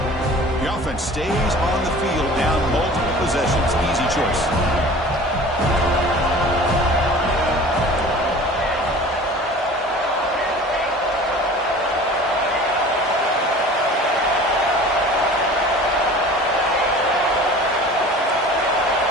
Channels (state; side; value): normal; both; correlation 0.43